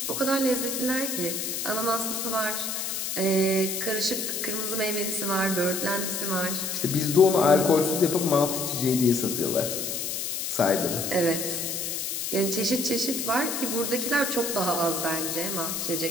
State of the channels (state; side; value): noise; left; hiss, 3 dB below the sound